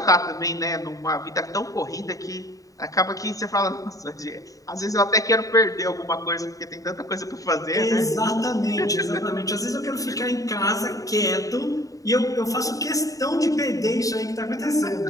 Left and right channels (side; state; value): right; late; 0.17 ms